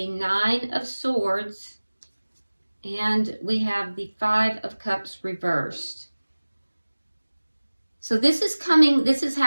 Nine of Swords. And we have the Five of Cups reversed. So this is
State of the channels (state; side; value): inverted; both; correlation -1.00